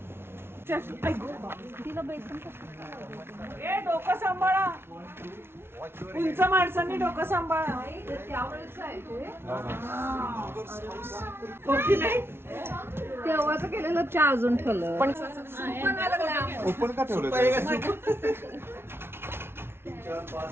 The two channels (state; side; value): late; left; 0.12 ms